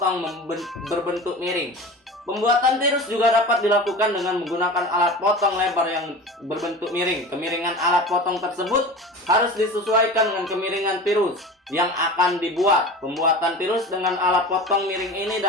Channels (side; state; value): both; normal; correlation 0.34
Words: berbentuk miring. Pembuatan tirus juga dapat dilakukan dengan menggunakan alat potong lebar yang berbentuk miring. Kemiringan alat potong tersebut harus disesuaikan dengan kemiringan tirus yang akan dibuat. Pembuatan tirus dengan alat potong miring ini